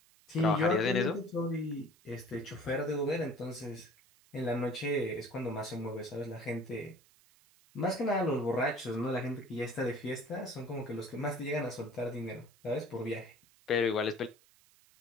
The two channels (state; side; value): noise; right; hiss, 29 dB below the sound